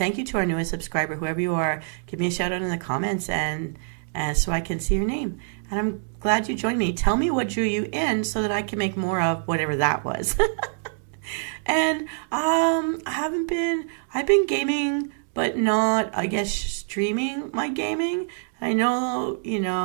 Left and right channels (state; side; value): silent; left; digital silence